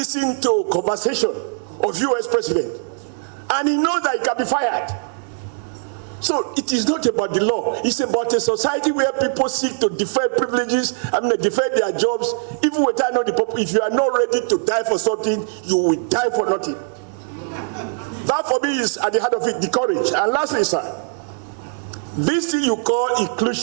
to conversation of US president. And he knows that he can be fired. So it is not about the law. It's about a society where people seek to defend privileges, defend their jobs, even without knowing the purpose. If you are not ready to die for something, you will die for nothing. That for me is at the heart of it, the courage. And lastly, sir, this thing you call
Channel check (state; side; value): silent; left; 60 dB below the other